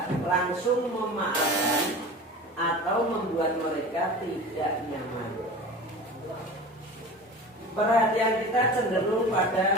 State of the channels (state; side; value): normal; both; correlation 0.35